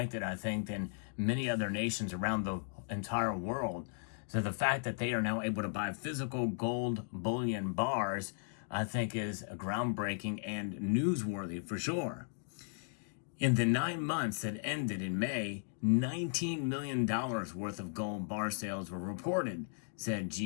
I think, than many other nations around the entire world. So the fact that they are now able to buy physical gold bullion bars, I think, is groundbreaking and newsworthy for sure. In the 9 months that ended in May, $19 million worth of gold bar sales were reported, said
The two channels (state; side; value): silent; right; digital silence